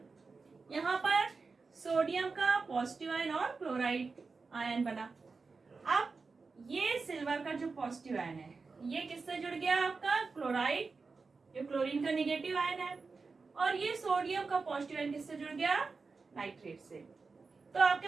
यहाँ पर सोडियम का पॉजिटिव आयन और क्लोराइड आयन बना। अब ये सिल्वर का जो पॉजिटिव आयन है ये किससे जुड़ गया, आपका क्लोराइड, जो क्लोरीन का निगेटिव आयन है, और ये सोडियम का पॉजिटिव आयन किससे जुड़ गया, नाइट्रेट से। तो आपके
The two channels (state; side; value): quieter; left; 4.4 dB